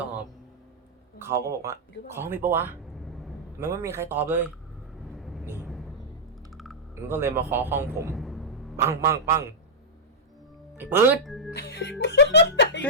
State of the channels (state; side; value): normal; both; correlation -0.09